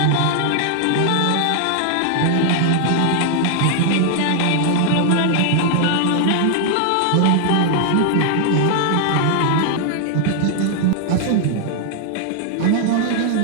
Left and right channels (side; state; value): both; different; correlation 0.00